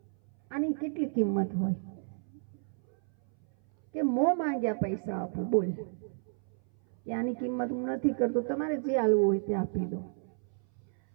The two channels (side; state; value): left; silent; 57 dB below the other